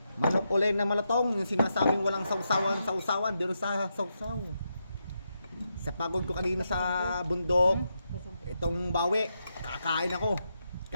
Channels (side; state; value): both; inverted; correlation -0.84